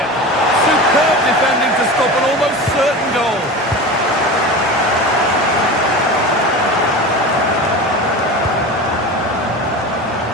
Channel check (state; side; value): normal; both; correlation 0.30